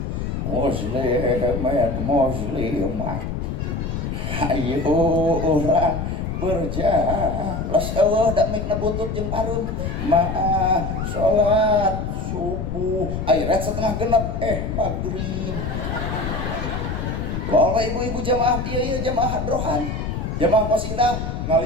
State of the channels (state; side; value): noise; left; rumble, 3 dB below the sound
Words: muslimat ayo orang berjalan eueuh da mikna butut jeung parum maah salat subuh airet setengah genep maghrib. Kalau ibu-ibu jamaah ieu jamaah hadrohan jamaah qasidah